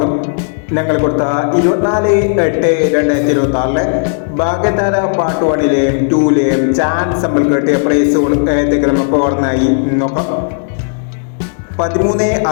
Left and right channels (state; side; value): silent; right; 72 dB below the other